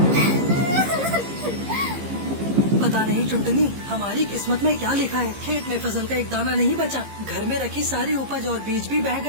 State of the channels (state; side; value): late; left; 15 ms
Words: पता नहीं टुनटुनी, हमारी किस्मत में क्या लिखा है। खेत में फसल का एक दाना नहीं बचा, घर में रखी सारी उपज और बीज भी बह